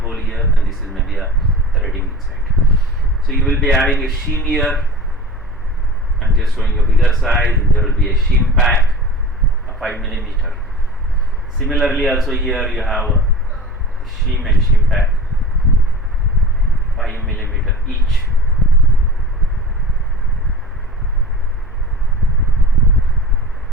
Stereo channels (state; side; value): normal; both; correlation 0.37